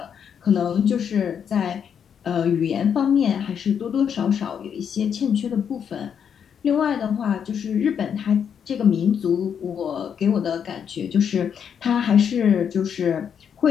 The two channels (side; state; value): right; quieter; 7.8 dB